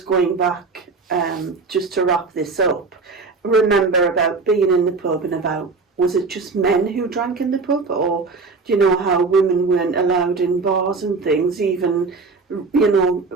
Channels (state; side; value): quieter; left; 4.1 dB